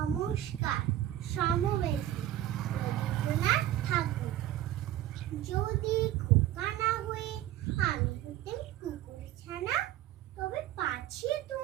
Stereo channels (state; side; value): quieter; left; 12.9 dB